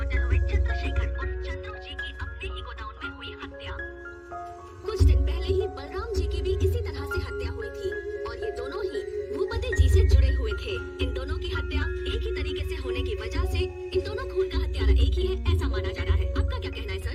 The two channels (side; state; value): both; identical; correlation 1.00